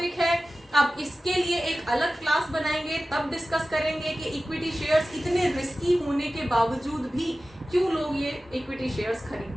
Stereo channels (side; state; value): both; normal; correlation 0.96